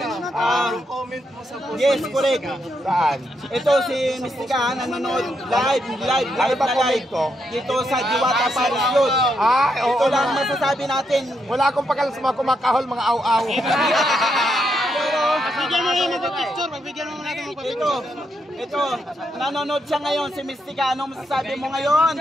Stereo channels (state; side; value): normal; both; correlation 0.80